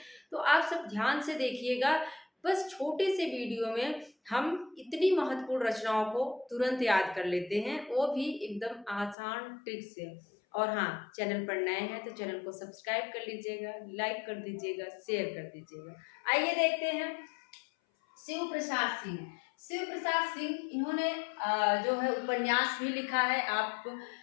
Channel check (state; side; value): drops out; right; at 9.2 s